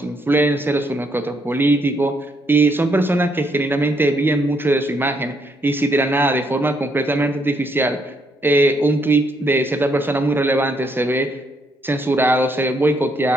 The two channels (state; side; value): normal; both; correlation 0.73